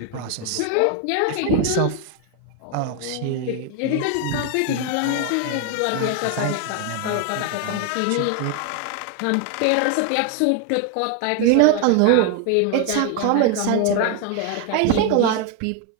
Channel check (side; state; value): both; different; correlation 0.01